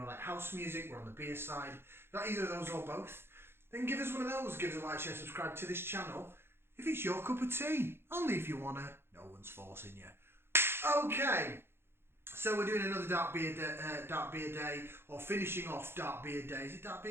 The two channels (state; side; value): late; left; 0.11 ms